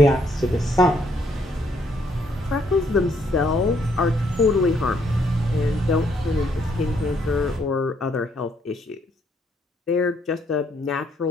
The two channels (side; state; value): both; normal; correlation 0.70